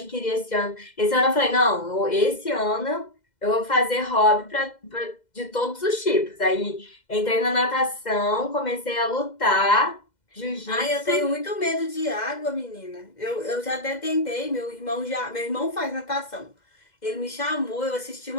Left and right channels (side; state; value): right; late; 2.0 ms